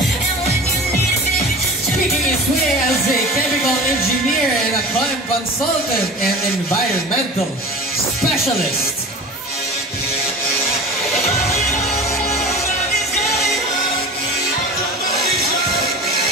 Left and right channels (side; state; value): both; normal; correlation 0.35